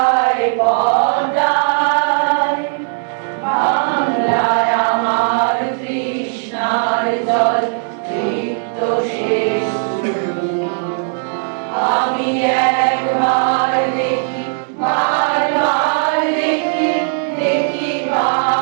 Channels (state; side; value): silent; left; 65 dB below the other